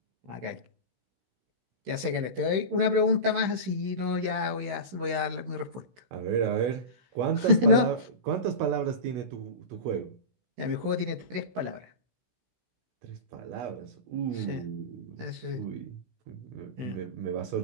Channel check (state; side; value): late; left; 16 ms